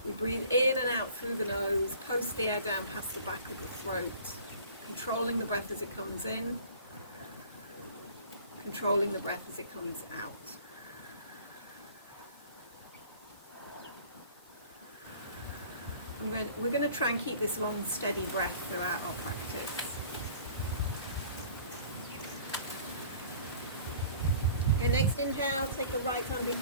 we breathe in and out through the nose, post the air down past the back of the throat, controlling the breath as it comes in, controlling the breath as it comes out. We're going to try and keep this long, steady breath throughout our practice. Okay, next inhale, take the right arm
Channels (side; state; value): both; inverted; correlation -0.50